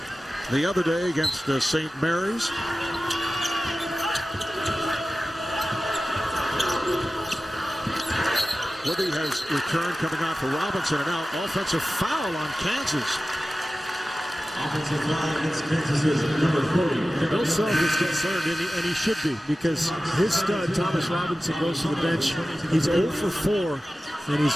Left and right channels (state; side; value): normal; both; correlation 0.95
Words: the other day against St. Mary's. Withey has returned, coming out for Robinson, and now offensive foul on Kansas. Offensive foul against Kansas is number 40. Bill Self is concerned, and he should be, because his stud, Thomas Robinson, goes to the bench. He's 0 for 4, and he's